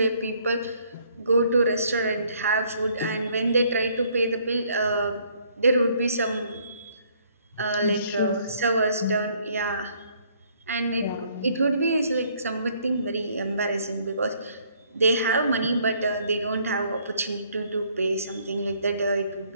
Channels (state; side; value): inverted; both; correlation -0.65